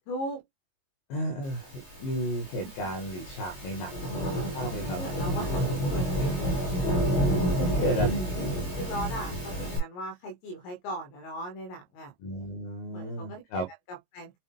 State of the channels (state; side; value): late; right; 22 ms